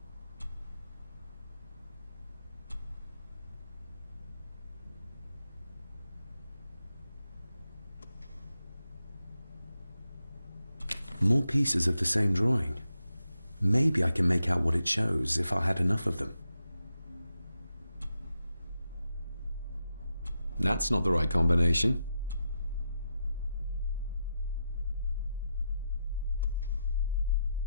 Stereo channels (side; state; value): both; inverted; correlation -0.86